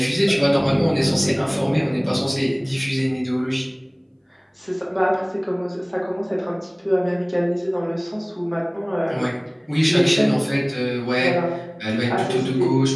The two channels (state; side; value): identical; both; correlation 1.00